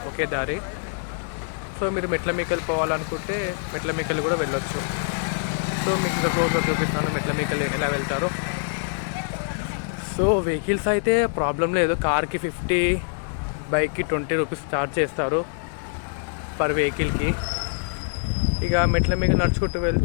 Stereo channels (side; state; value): right; silent; 56 dB below the other